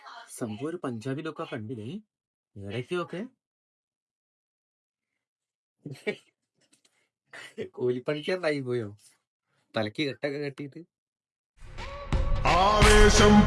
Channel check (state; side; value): identical; both; correlation 1.00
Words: സംഭവം ഒരു പഞ്ചാബിലൊക്കെ കണ്ടില്ലേ, ഇടയ്ക്കൊക്കെ കൂലിപ്പണിക്കാരനായി പോയോ, തലക്ക് കെട്ടൊക്കെ കെട്ടിയിട്ട്. ആവേശം